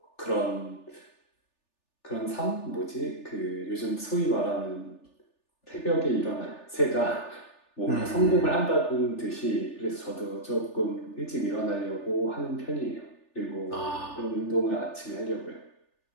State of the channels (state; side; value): late; right; 3.4 ms